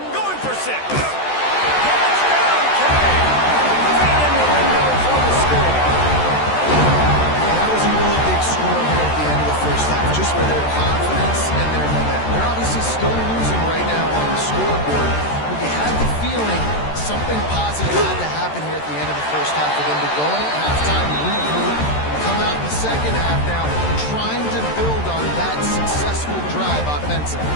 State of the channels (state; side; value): late; right; 13 ms